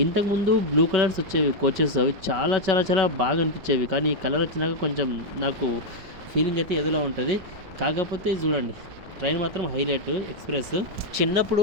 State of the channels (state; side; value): late; left; 5.3 ms